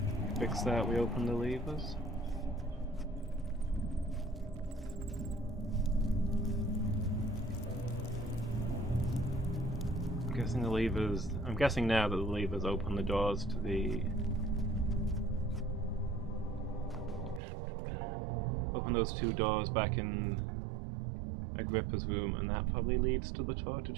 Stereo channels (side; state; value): left; drops out; at 17.4 s